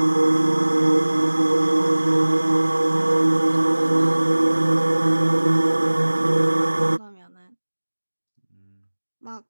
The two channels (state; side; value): inverted; both; correlation -1.00